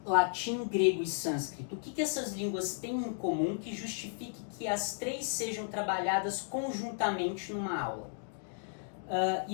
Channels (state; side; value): silent; right; digital silence